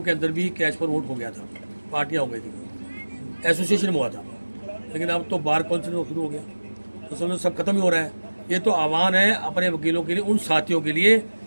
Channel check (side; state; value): both; inverted; correlation -1.00